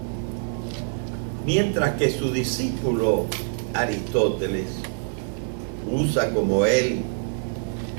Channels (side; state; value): left; silent; 57 dB below the other